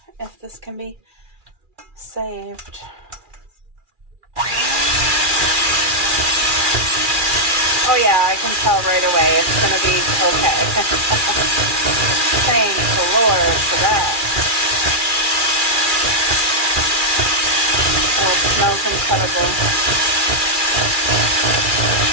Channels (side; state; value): left; late; 2.4 ms